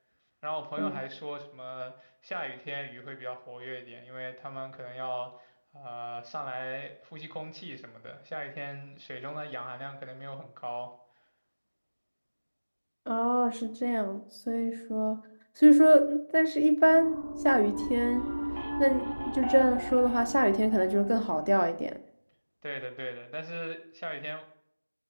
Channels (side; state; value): both; inverted; correlation -1.00